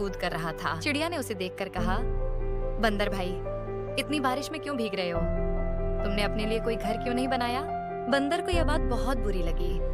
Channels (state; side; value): identical; both; correlation 1.00